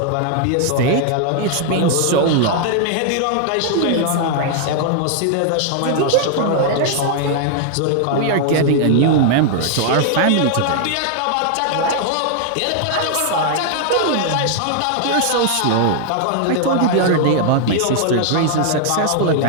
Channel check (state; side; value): different; both; correlation 0.00